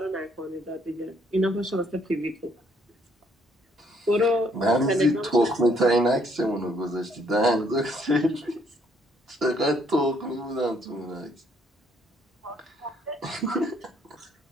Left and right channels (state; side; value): normal; both; correlation 0.68